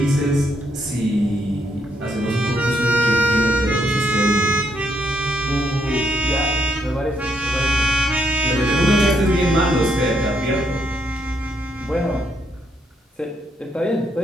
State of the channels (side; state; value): both; normal; correlation 0.75